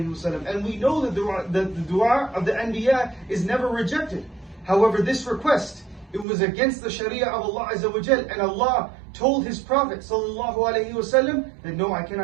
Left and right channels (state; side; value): drops out; left; at 6.2 s